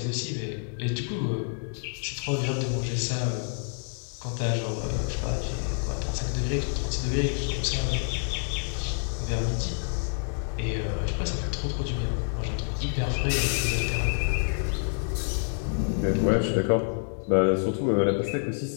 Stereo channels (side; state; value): right; silent; 59 dB below the other